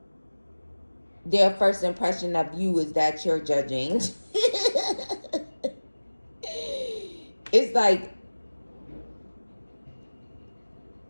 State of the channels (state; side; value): inverted; both; correlation -1.00